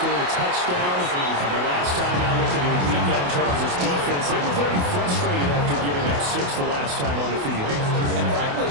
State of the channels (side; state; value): left; late; 28 ms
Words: a touchdown. The last time I looked at the weekend Chargers defense, they were very frustrated after giving up 6 the last time on the field. And frankly,